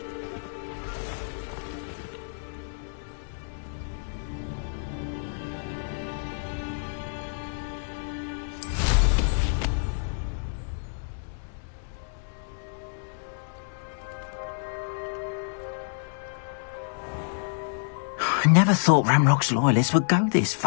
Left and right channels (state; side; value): silent; right; digital silence